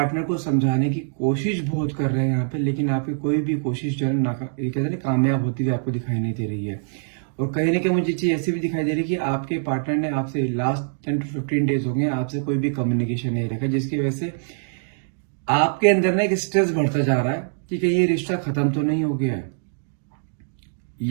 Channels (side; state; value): left; silent; digital silence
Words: को समझाने की कोशिश बहुत कर रहे हैं यहाँ पे, लेकिन आपकी कोई भी कोशिश जो है ये कहते हैं ना कामयाब होती हुई आपको दिखाई नहीं दे रही है। और कहीं ना कहीं मुझे चीज ऐसी भी दिखाई दे रही है कि आपके पार्टनर ने आपसे लास्ट 10 to 15 डेज हो गए आपसे कोई भी कम्युनिकेशन नहीं रखा, जिसकी वजह से आपके अंदर ना एक स्ट्रेस बढ़ता जा रहा है कि कहीं ये रिश्ता खत्म तो नहीं हो गया है।